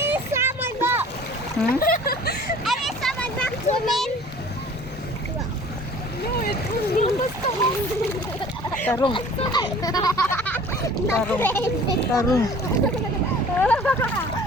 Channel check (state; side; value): normal; both; correlation 0.48